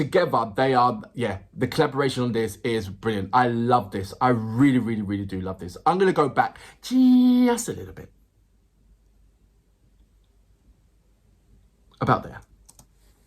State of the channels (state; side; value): identical; both; correlation 1.00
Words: they are. Yeah, the collaboration on this is brilliant. I love this. I really, really, really do love this. I'm gonna go back just a little bit. About there.